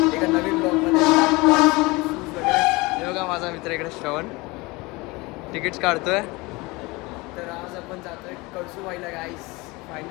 एका नवीन ब्लॉगमध्ये. हे बघा माझा मित्र इकडे श्रवण तिकीट्स काढतोय. तर आज आपण जातोय कळसूबाईला गाईस.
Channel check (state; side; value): quieter; right; 23.7 dB